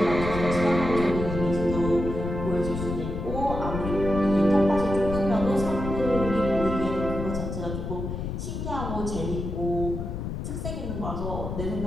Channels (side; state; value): left; noise; rumble, 5 dB below the sound